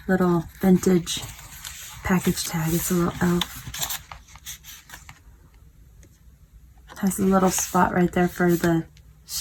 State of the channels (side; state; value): both; identical; correlation 1.00